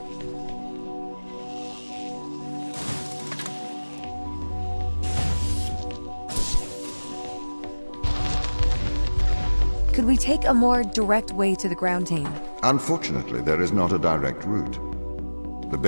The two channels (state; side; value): inverted; both; correlation -1.00